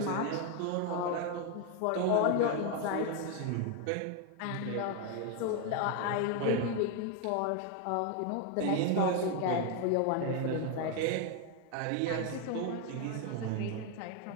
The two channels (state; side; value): different; both; correlation 0.01